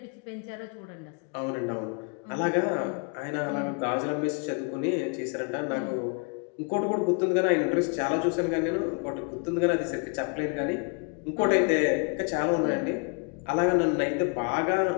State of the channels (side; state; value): right; quieter; 36.5 dB